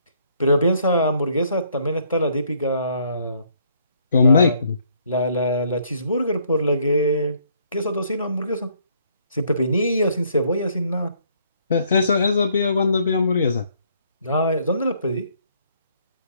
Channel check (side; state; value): both; inverted; correlation -0.67